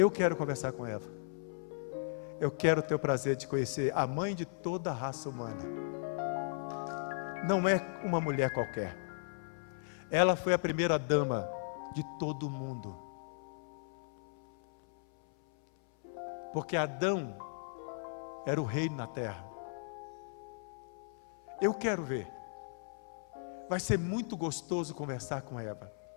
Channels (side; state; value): right; silent; 53 dB below the other